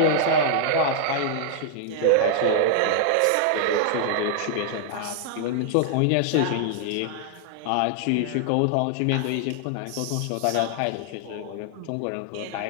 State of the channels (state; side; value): different; both; correlation -0.01